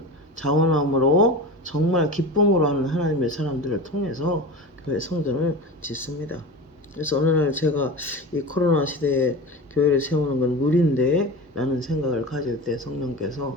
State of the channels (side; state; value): both; normal; correlation 0.30